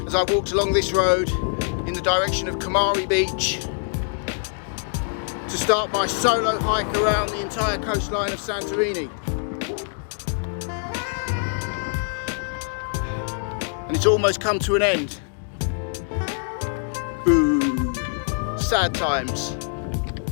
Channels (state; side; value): silent; right; 59 dB below the other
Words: as I walked along this road in the direction of Kamari Beach to start my solo hike around the entire coastline of Santorini. And it's almost come to an end. Boo. Sad times.